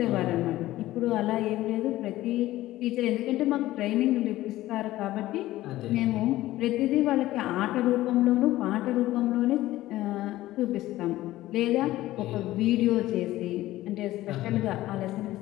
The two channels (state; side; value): quieter; right; 15.9 dB